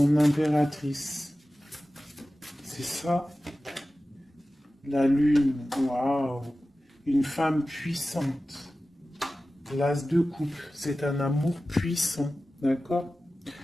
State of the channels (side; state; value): both; normal; correlation 0.95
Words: impératrice. C'est ça. La lune, waouh. Une femme puissante. L'as de coupe, c'est un amour puissant, d'accord?